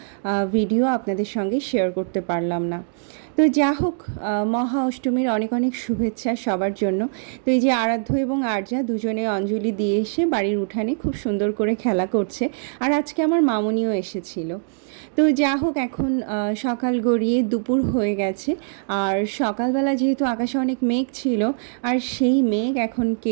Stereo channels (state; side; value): silent; left; digital silence